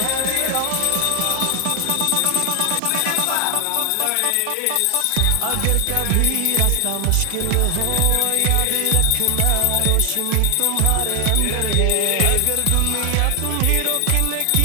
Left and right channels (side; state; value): both; different; correlation 0.00